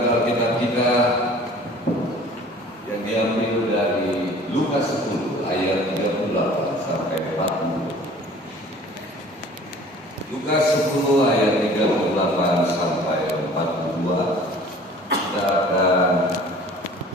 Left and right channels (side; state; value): both; normal; correlation 0.48